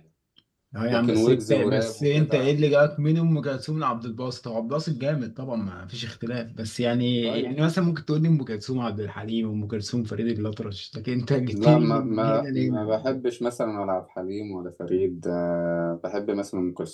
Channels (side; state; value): both; identical; correlation 1.00